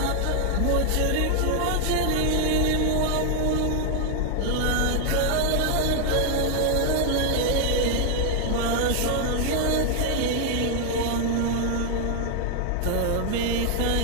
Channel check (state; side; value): different; both; correlation 0.00